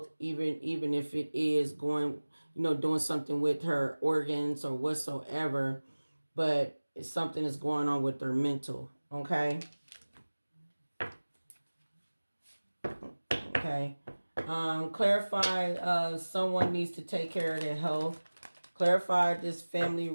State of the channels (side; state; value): both; inverted; correlation -1.00